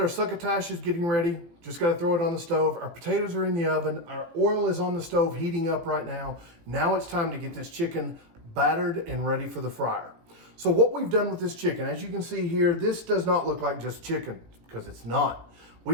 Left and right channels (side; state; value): left; late; 17 ms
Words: succotash is getting ready, just gotta throw it on the stove. Our potatoes are in the oven. Our oil is on the stove heating up right now. Now it's time to get this chicken battered and ready for the fryer. So what we've done with this chicken, as you can see here, this does not look like just chicken, because it's not.